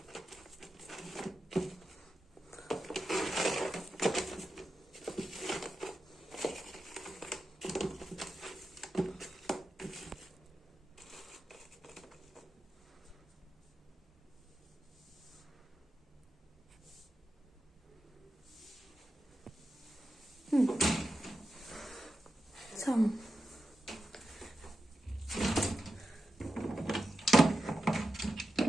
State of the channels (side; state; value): both; normal; correlation 0.91